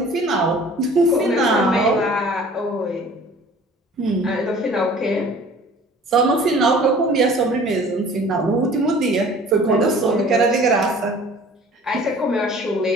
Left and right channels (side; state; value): both; normal; correlation 0.48